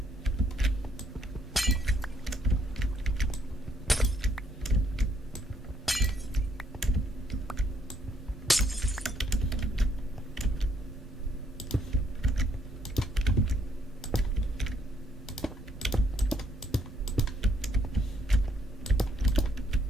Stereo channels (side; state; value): both; normal; correlation 0.70